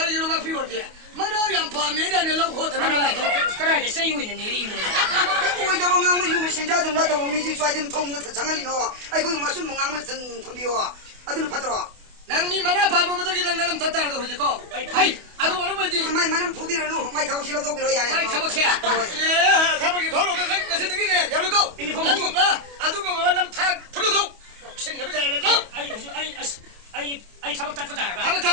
이놈 앞이 어디? 만화 양파 매단에 놓고 들어가. 그래 세유 있는 일이 이거. 왜 저거 망고 유미 신자 좀 나도 미지 쏴든 통는 장알리노. 아이고 마술 망고 든 덤비요. 아들은 받들어. 낭니 만화 바보들이 나는 덧다라도 하지고. 아이 아주 어머니. 마이 만은 부비를 놓 마이 타고 싫어도 그러야 해. 아이 타박해야. 예 타박이 돌아오는 것이 되기네. 열고. 난 봐. 아주 그 만남 타 풀어도. 신내면 잘해서. 아이 타박 닦다 봐. 타박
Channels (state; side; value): late; left; 28 ms